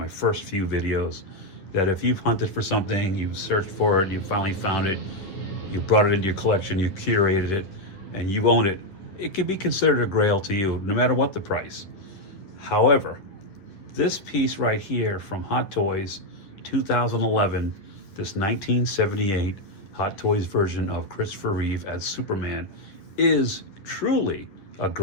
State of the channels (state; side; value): late; right; 10 ms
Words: first few videos, that if you've hunted for something, you searched for it, you finally found it, you brought it into your collection, you curated it, and you own it, it can be considered a grail to you, no matter what the price. However, this piece right here from Hot Toys 2011, this 1978 Hot Toys version of Christopher Reeve as Superman, is truly a